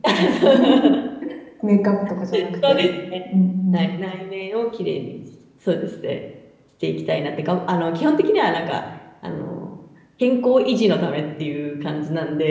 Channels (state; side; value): identical; both; correlation 1.00